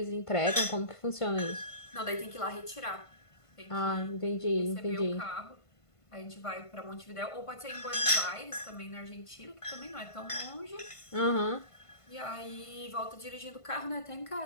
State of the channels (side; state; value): right; late; 1.5 ms